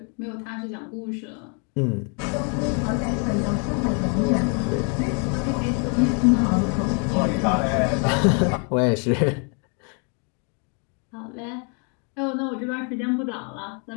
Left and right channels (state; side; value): quieter; right; 38.0 dB